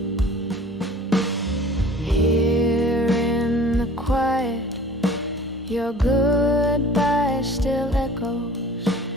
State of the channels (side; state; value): both; normal; correlation 0.46